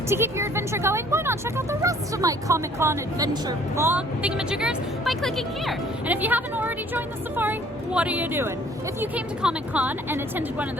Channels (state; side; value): normal; both; correlation 0.56